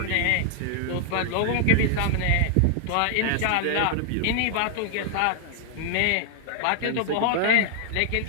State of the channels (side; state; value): both; different; correlation 0.00